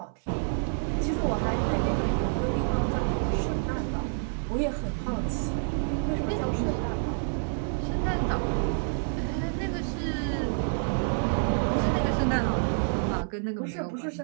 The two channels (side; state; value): left; silent; 59 dB below the other